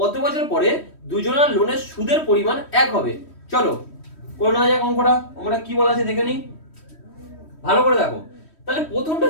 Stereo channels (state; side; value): late; right; 3.1 ms